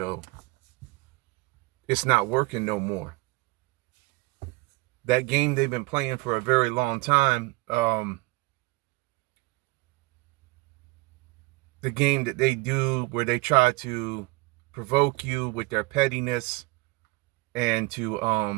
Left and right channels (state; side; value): quieter; left; 23.8 dB